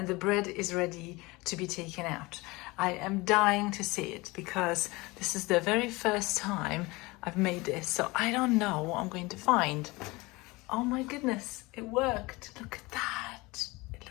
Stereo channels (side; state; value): right; quieter; 23.1 dB